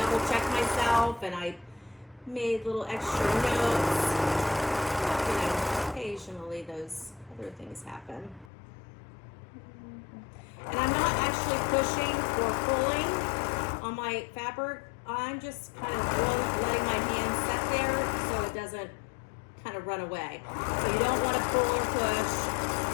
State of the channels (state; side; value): drops out; right; at 8.5 s